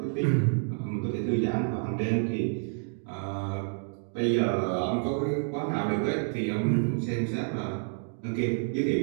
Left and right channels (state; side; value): silent; left; 59 dB below the other